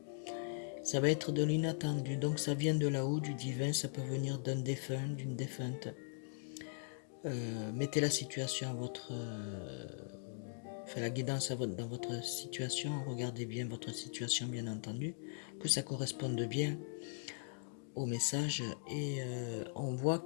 Ça va être de l'inattendu. Donc ça vient de là-haut, du divin, ça peut venir d'un défunt, d'une défunte. Mettez la situation à votre... Enfin, la guidance dans votre situation. Regardez bien votre situation, bien entendu. Que ça corresponde bien au message. Et on voit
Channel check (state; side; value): silent; right; digital silence